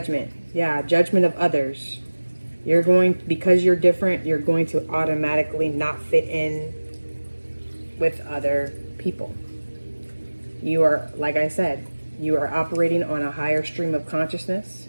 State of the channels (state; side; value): inverted; both; correlation -1.00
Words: Yeah, judgment of others. You're going, because you're different, you're going to automatically not fit in with other people. You are, like I said, you are operating on a higher stream of consciousness,